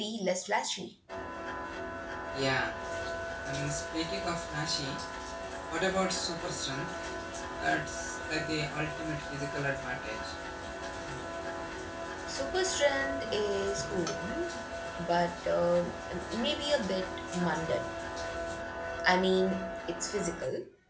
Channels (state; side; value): identical; both; correlation 1.00